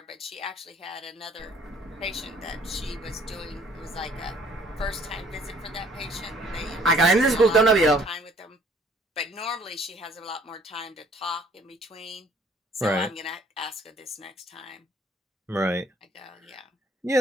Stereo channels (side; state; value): both; normal; correlation 0.59